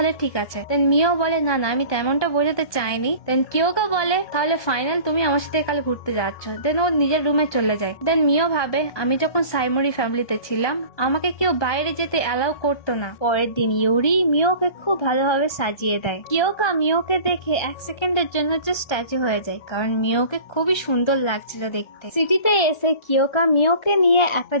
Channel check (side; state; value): right; late; 1.2 ms